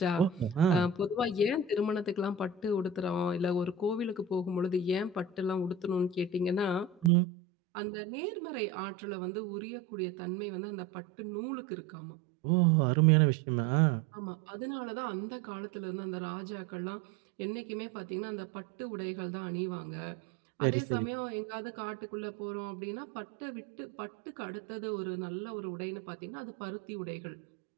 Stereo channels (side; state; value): left; drops out; at 7.1 s